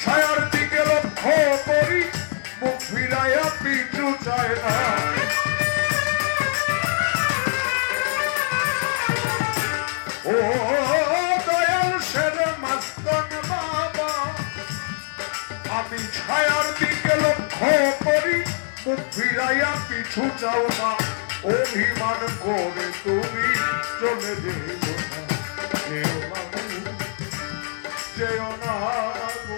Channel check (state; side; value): silent; right; digital silence